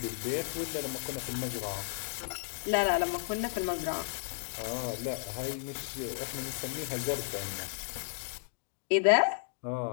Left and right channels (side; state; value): right; silent; digital silence